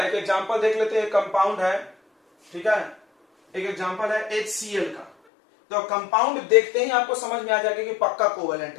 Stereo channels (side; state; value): right; drops out; at 5.1 s